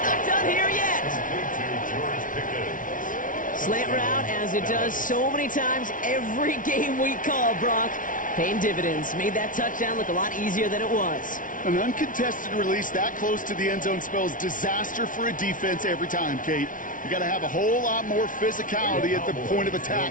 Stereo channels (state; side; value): late; right; 0.38 ms